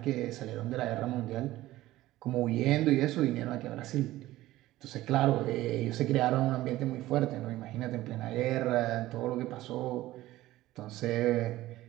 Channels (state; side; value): quieter; left; 16.2 dB